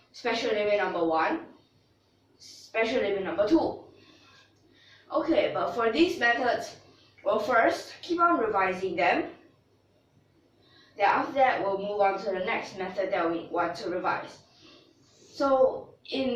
special limit number 1, special limit number 2. Okay, but for these methods, we'll first keep on revising them. Then after that, we'll move on to the next method that we want to revise. So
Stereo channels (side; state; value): both; identical; correlation 1.00